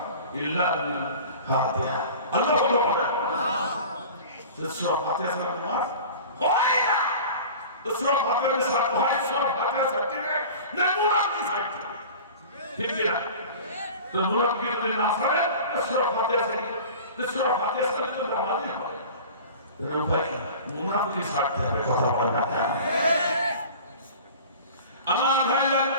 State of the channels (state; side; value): inverted; both; correlation -0.39